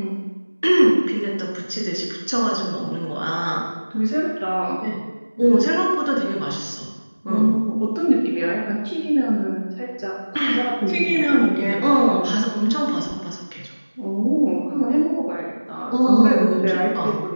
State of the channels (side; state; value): both; inverted; correlation -1.00